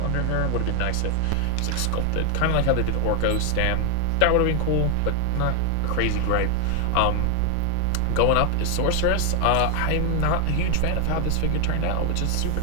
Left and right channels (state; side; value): different; both; correlation 0.00